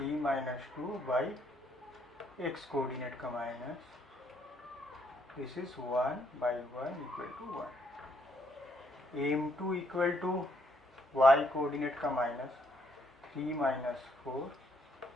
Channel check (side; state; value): both; normal; correlation 0.70